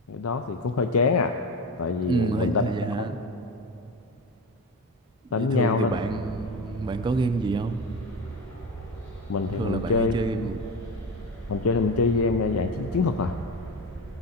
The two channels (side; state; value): both; normal; correlation 0.25